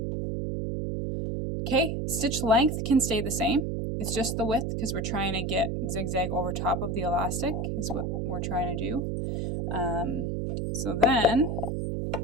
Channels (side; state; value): right; noise; hum, 1 dB below the sound